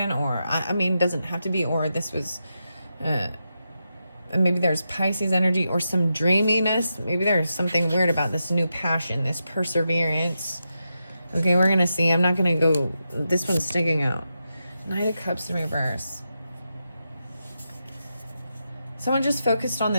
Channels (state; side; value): inverted; both; correlation -0.87